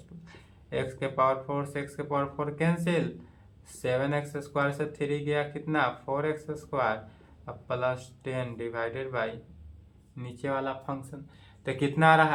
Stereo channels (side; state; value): both; identical; correlation 1.00